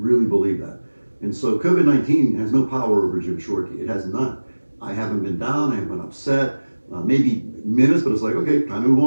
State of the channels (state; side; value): inverted; both; correlation -1.00